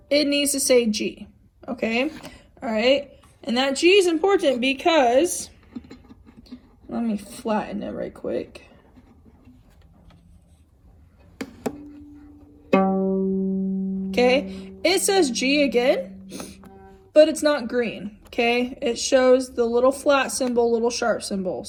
It needs to say G, okay? All right? And that G is important because, let me flatten it right quick. Okay? It says G again, but it's not green, okay? It shows the little flat symbol, little sharp symbol.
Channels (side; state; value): both; identical; correlation 1.00